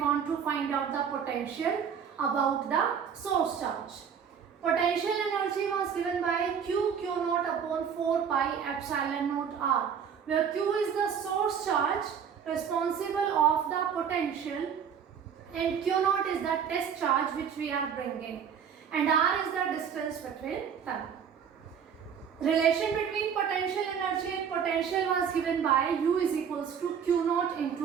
to find out the potential about the source charge. Potential energy was given by Q0 upon 4 pi epsilon naught R, where Q is the source charge responsible of the potential and Q0 is the test charge which we are bringing, and R is the distance between them. Relation between potential energy and potential was given by U is equals to Q0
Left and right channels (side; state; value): left; quieter; 7.5 dB